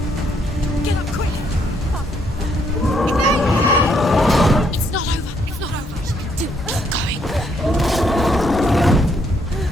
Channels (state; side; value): normal; both; correlation 0.72